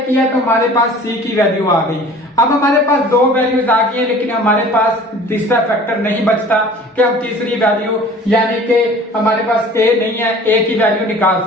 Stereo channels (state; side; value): normal; both; correlation 0.46